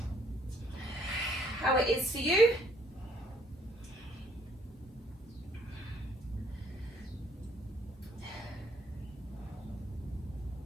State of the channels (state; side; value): normal; both; correlation 0.64